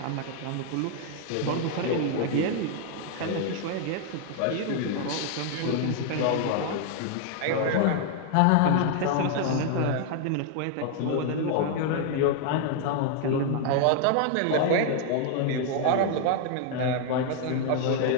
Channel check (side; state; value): both; different; correlation 0.00